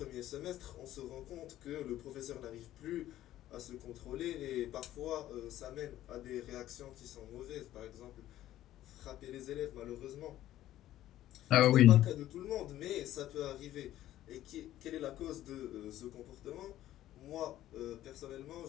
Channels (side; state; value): right; quieter; 13.5 dB